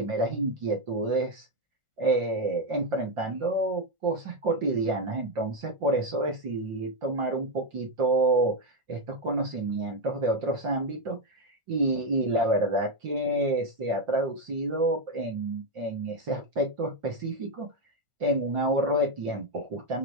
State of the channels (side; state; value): left; late; 1.4 ms